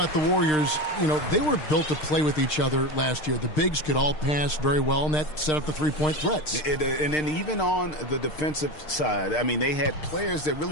the Warriors, you know, they were built to play with each other last year. The bigs could all pass very well, and that set up the three-point threats. And then even on the defensive side, I mean, they had players that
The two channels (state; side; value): late; right; 6.5 ms